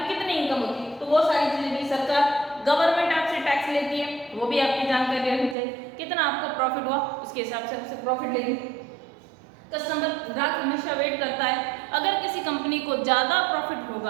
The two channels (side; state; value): left; drops out; at 5.6 s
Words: कितनी इनकम होती है। तो वो सारी चीज़ें भी सरकार, गवर्नमेंट आपसे टैक्स लेती है, वो भी आपकी जानकारी रखनी चाहिए, कितना आपको प्रॉफिट हुआ उसके हिसाब से आपसे प्रॉफिट लेगी। कस्टमर, ग्राहक हमेशा वेट करता है, अगर किसी कंपनी को ज़्यादा प्रॉफिट